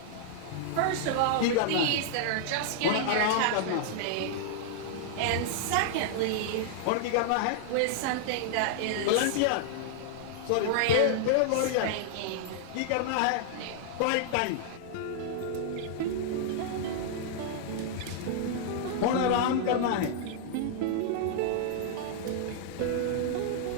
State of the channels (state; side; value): different; both; correlation -0.01